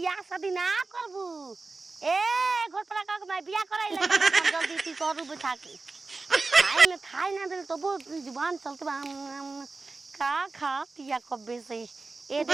शादी ना करबू ए घर पर का मैं बियाह कराई लगा जल्दी ती करू बैठा के खाए ना दे तो वो जुबान चलते का खा तिया कब्बे से ए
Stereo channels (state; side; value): quieter; left; 3.7 dB